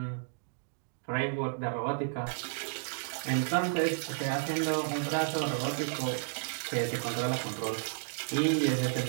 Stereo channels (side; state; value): left; silent; digital silence